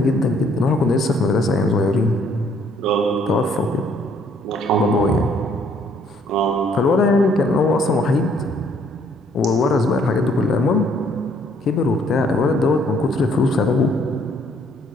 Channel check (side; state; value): both; normal; correlation 0.64